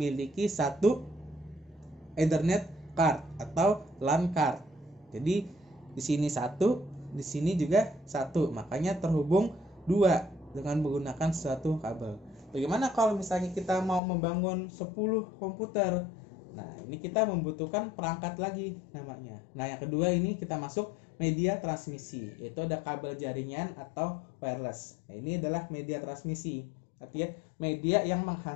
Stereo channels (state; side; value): drops out; right; at 14.0 s